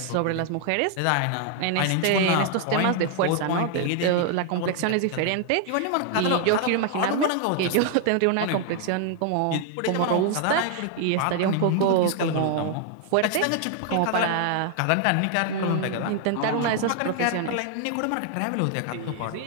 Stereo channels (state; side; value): different; both; correlation 0.00